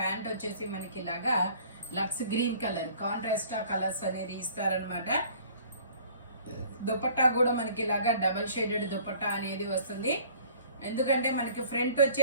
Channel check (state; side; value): inverted; both; correlation -0.52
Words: వచ్చేసి మనకి ఇలాగా lux green colour, contrast colours అనేది ఇస్తారనమాట. దుపట్టా కూడా మనకి ఇలాగా డబల్ షేడెడ్ దుపట్టా అనేది వస్తుంది. ఎందుకంటే మనకి ఫ్రంట్